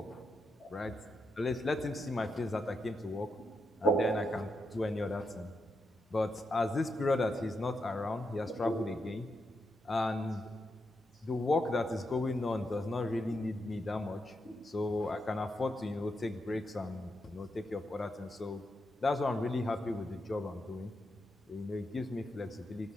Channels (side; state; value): both; normal; correlation 0.84